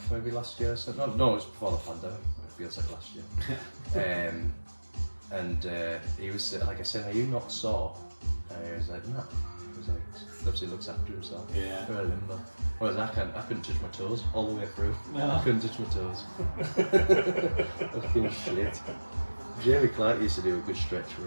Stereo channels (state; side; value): inverted; both; correlation -1.00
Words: maybe last year. So no, it was before the pandemic. It feels like last year. and he was like, I said, "Are you not sore?" And he was like, "No." He was like, obviously looks after himself. Yeah. Very limber. Whereas I couldn't touch my toes all the way through. No. I couldn't touch my toes. Fucking shit. Jamie Clark used to do a good stretch